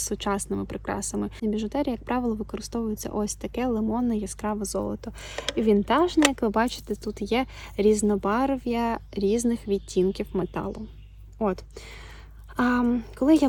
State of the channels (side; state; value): both; identical; correlation 1.00